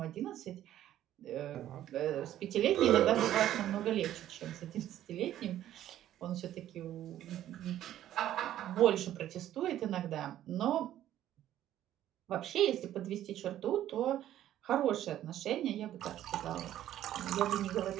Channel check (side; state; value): left; quieter; 12.3 dB